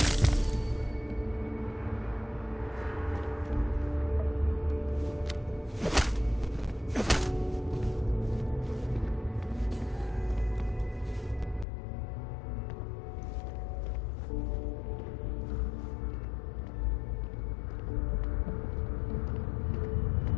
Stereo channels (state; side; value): drops out; right; at 11.7 s